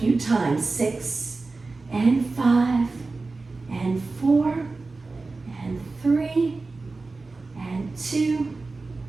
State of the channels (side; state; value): left; quieter; 3.7 dB